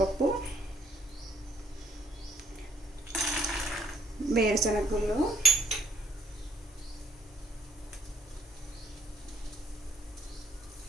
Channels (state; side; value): normal; both; correlation 0.64